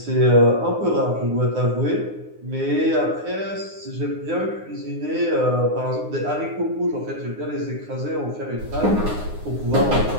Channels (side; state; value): left; late; 9.7 ms